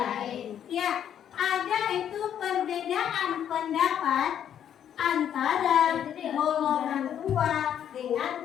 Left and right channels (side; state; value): right; quieter; 9.6 dB